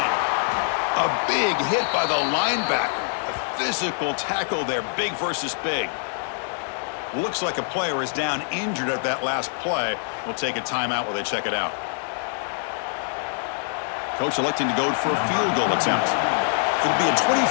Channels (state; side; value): silent; right; 62 dB below the other